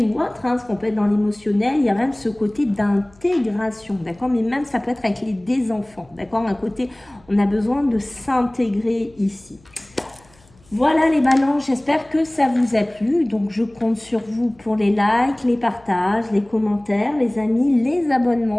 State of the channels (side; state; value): left; noise; hum, 29 dB below the sound